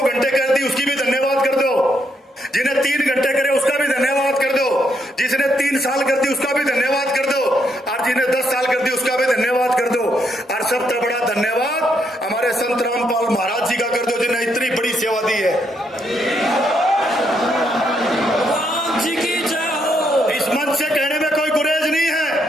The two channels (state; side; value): normal; both; correlation 0.76